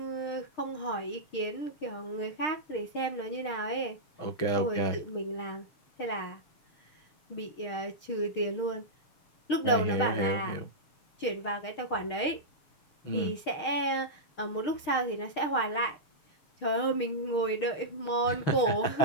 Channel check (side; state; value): right; late; 6.6 ms